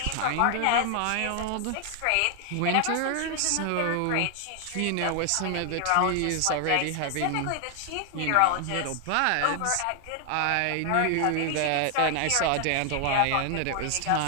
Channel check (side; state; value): both; different; correlation 0.00